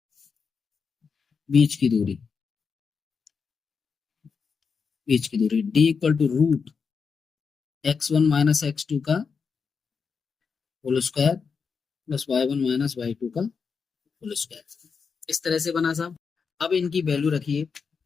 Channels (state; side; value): quieter; right; 5.6 dB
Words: बीच की दूरी D equal to root x1 minus x2 का whole square plus y1 minus y2 का होल स्क्वायर, इस तरह से बना साहब। अब इनकी वैल्यू रखिए,